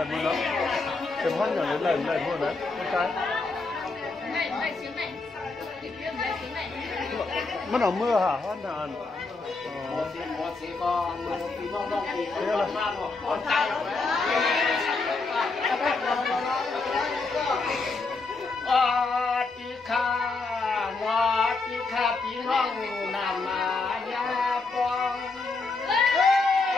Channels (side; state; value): right; quieter; 3.8 dB